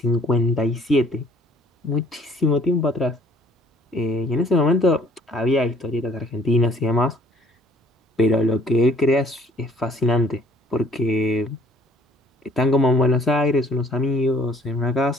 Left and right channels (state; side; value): normal; both; correlation 0.58